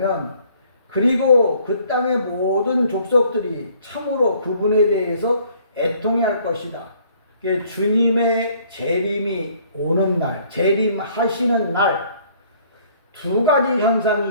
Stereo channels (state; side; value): inverted; both; correlation -0.60